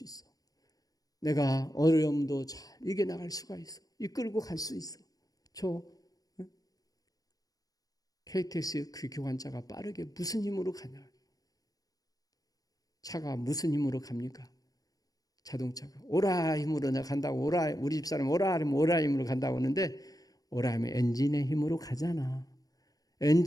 있어. 내가 어려움도 잘 이겨나갈 수가 있어. 이끌고 갈 수 있어. 저 KTX 그 기관차가 빠르게 무슨 힘으로 가냐? 차가 무슨 힘으로 갑니까? 자동차가 오라 힘으로 내가 간다고, 오라, 우리 집사람 오라 하면 오라 힘으로 간다고 하는데 오라면 엔진의 힘으로 가잖아.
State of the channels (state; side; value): late; right; 0.18 ms